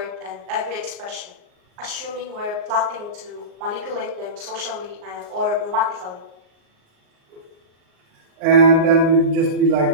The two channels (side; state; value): left; late; 38 ms